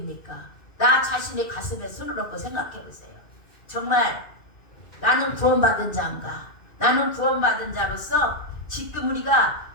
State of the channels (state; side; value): late; right; 2.4 ms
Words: 나 자신이 가슴에 손을 얹고 생각해 보세요. 정말 나는 구원받은 자인가? 나는 구원받은 자로서 지금 우리가